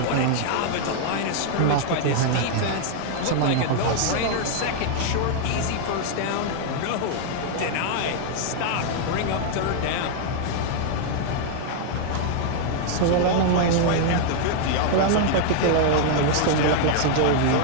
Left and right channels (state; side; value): different; both; correlation 0.00